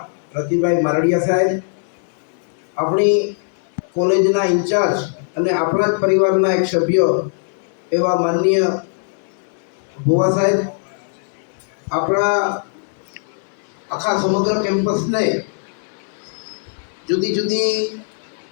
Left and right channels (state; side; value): silent; right; 66 dB below the other